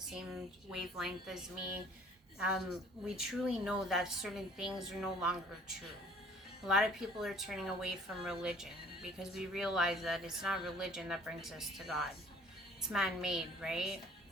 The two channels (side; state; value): both; normal; correlation 0.53